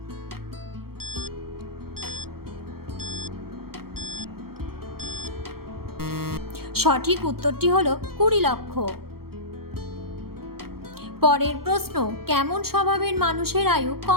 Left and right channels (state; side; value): late; left; 0.94 ms